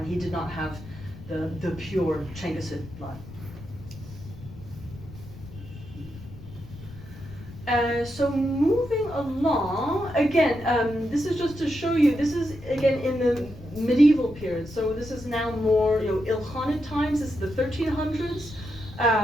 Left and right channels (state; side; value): noise; left; rumble, 16 dB below the sound